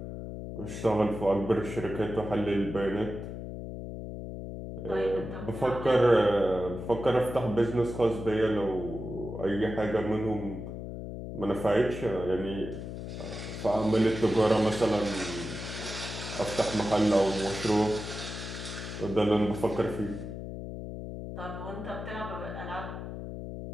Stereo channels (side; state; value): left; noise; hum, 8 dB below the sound